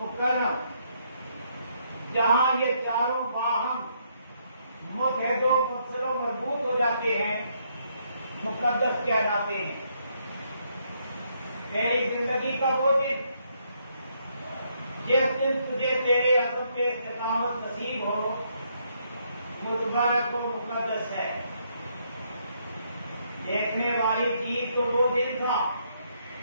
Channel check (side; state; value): both; inverted; correlation -0.73